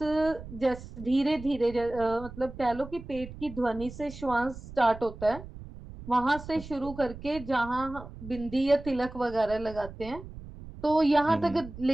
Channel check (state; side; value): noise; right; rumble, 14 dB below the sound